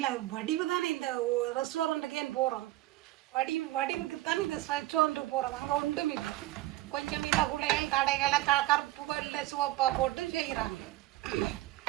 வடிவு தானே இந்த ரெஸ்டாரண்ட்டுக்கே போகிறோம். வடிவுக்கு தான் இந்த ரெஸ்டாரண்ட்டுக்கு போகிறோம். அங்கே ஒன்றும் இல்லை. கொஞ்சம் இல்லை குளைகள் கடைகளை கருப்பு வெள்ளை சிவப்பாக போட்டு செய்கிறாங்க.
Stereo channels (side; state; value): left; quieter; 16.9 dB